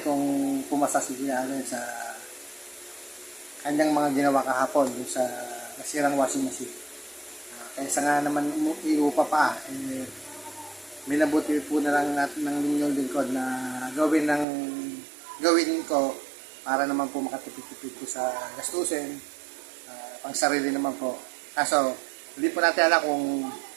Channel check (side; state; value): left; drops out; at 14.5 s